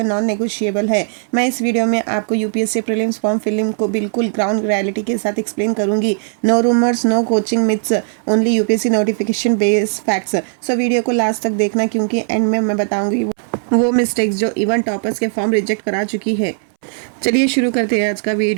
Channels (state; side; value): silent; left; 68 dB below the other